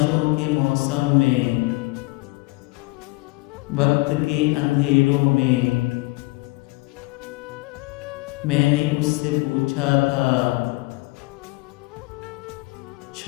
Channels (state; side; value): quieter; right; 24.2 dB